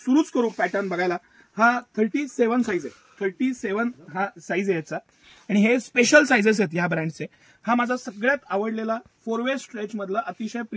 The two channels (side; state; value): both; identical; correlation 1.00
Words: करू पॅटर्न बघायला. हा 37 साईज आहे. 37 हा साईज आहे याचा आणि हे स्पेशल साईजेस आहेत या ब्रँडचे. हा माझा सगळ्यात आवडलेला 4 वे स्ट्रेच मधला अतिशय